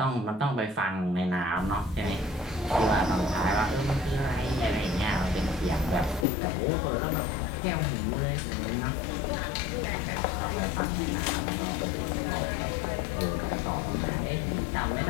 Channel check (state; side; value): drops out; right; at 6.2 s